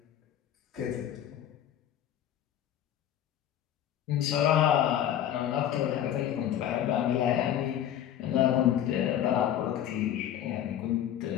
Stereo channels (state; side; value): quieter; right; 10.8 dB